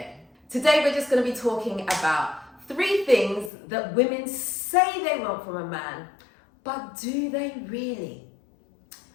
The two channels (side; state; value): right; drops out; at 3.5 s